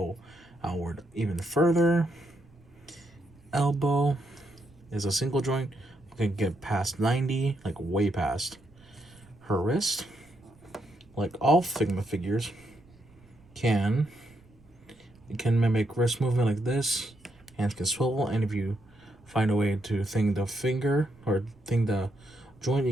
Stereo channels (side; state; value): right; noise; rumble, 27 dB below the sound